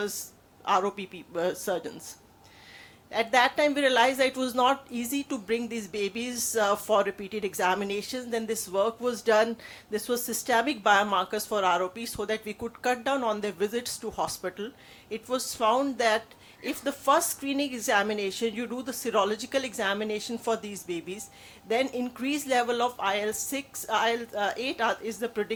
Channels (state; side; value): identical; both; correlation 1.00